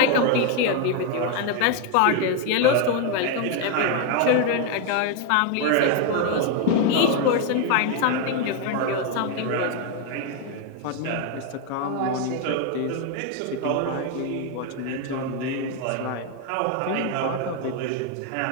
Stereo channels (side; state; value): both; different; correlation 0.01